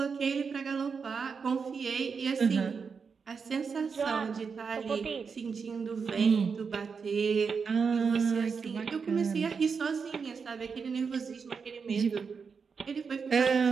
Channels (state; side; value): quieter; left; 5.6 dB